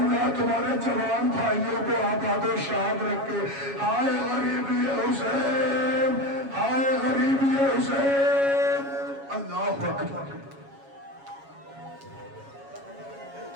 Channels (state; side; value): late; left; 7.2 ms